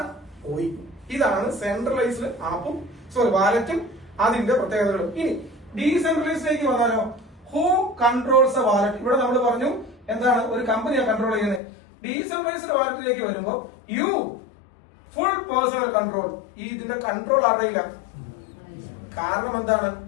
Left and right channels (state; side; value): drops out; right; at 11.6 s